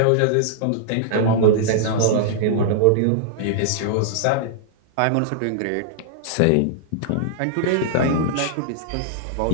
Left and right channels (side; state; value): both; different; correlation -0.01